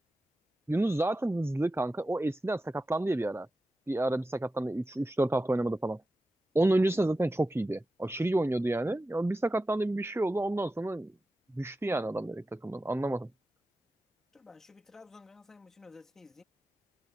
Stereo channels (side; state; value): both; normal; correlation 0.93